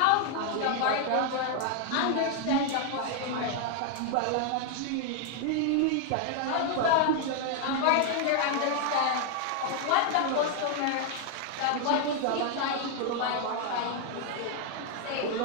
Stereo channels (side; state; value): both; different; correlation 0.00